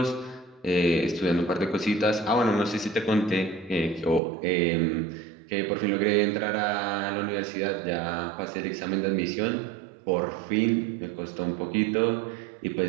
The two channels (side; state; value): left; drops out; at 4.2 s